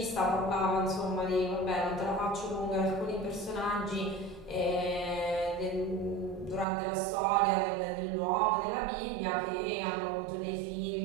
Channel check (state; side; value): drops out; left; at 6.7 s